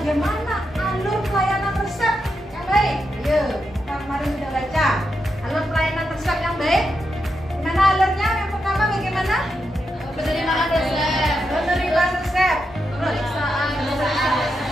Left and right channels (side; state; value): both; normal; correlation 0.85